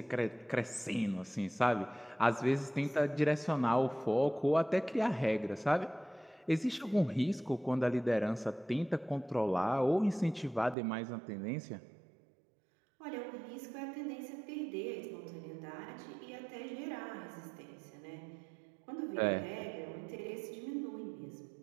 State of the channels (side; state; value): left; drops out; at 10.8 s